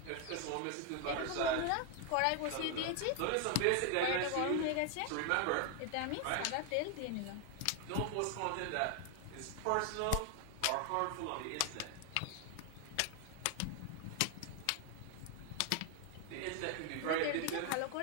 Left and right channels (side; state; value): both; different; correlation 0.01